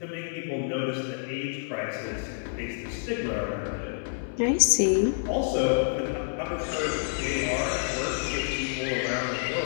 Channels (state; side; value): silent; right; digital silence